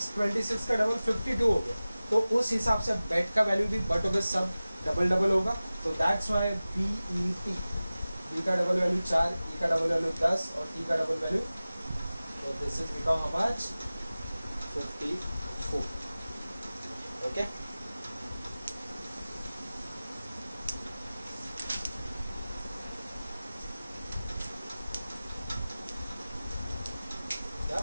का डबल 52 हो गया। तो उस हिसाब से बेट का वैल्यू भी बट होगा, सब डबल डबल होगा। तो दैट्स वाई BET, B का डबल वैल्यू 4, E का डबल वैल्यू 10 और T का डबल वैल्यू, तो this is become how much 54। Okay,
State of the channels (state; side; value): inverted; both; correlation -0.97